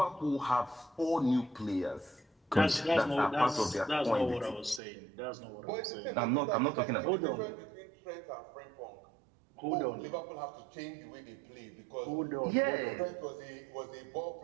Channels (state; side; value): drops out; left; at 4.8 s